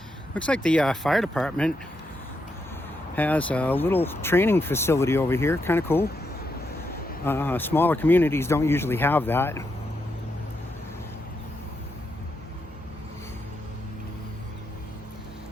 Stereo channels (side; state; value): both; normal; correlation 0.82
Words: Looks like the fire department has a little training facility over here. Kind of cool. Smaller communities don't usually have that.